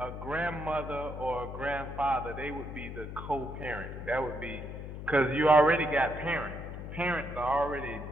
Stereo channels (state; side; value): noise; left; hum, 9 dB below the sound